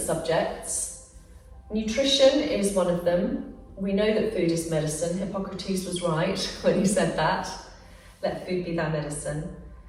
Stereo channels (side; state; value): both; identical; correlation 1.00